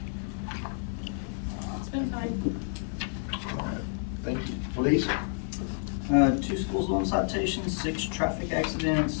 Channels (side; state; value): right; silent; 58 dB below the other